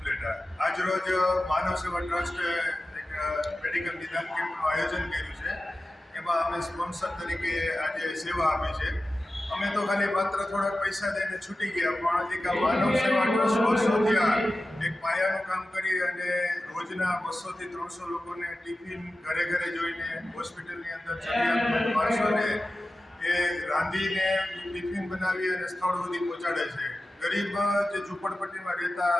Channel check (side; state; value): both; normal; correlation 0.94